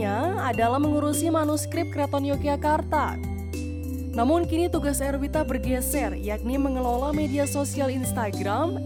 adalah mengurusi manuskrip Keraton Yogyakarta. Namun kini tugas Erwita bergeser, yakni mengelola media sosial Instagram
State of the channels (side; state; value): both; identical; correlation 1.00